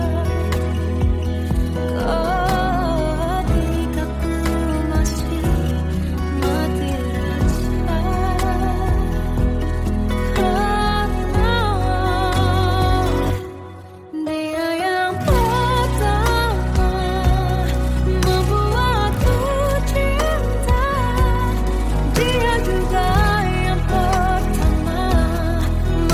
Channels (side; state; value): both; identical; correlation 1.00